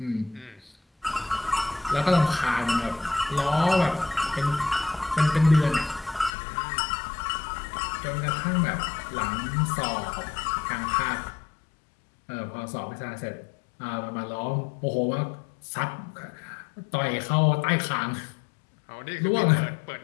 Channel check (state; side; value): drops out; right; at 6.3 s